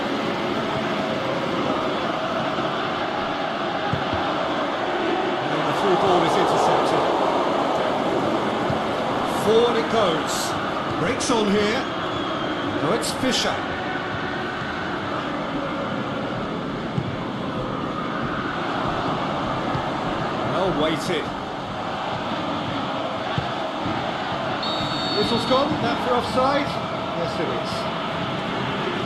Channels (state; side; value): identical; both; correlation 1.00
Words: And the through ball is intercepted. Forward it goes. Breaks on here. No, it's Fischer. Waited. Whistle's gone, that for offside? Yes it is.